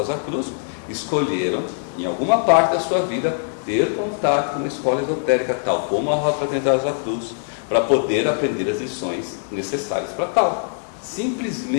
Cruz, escolheram em alguma parte da sua vida, ter contato com uma escola esotérica, tal como a Rosa Fraternidade Rosa Cruz, para poder aprender as lições necessárias para tal.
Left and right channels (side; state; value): right; silent; 62 dB below the other